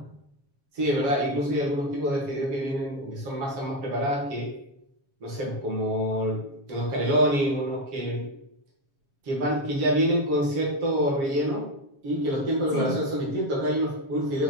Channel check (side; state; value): left; late; 7.3 ms